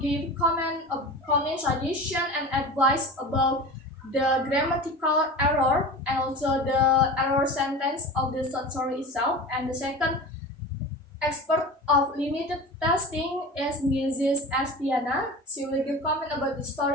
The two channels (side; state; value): both; normal; correlation 0.33